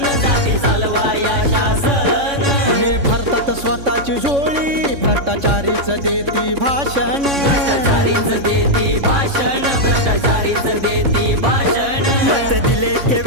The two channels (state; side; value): late; left; 3.6 ms